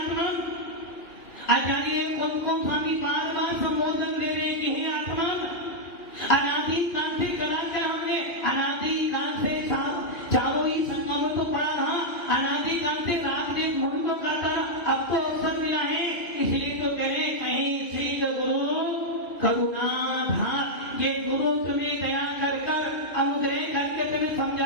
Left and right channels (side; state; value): right; late; 2.5 ms